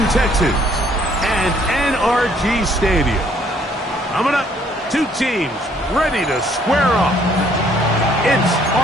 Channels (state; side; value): normal; both; correlation 0.63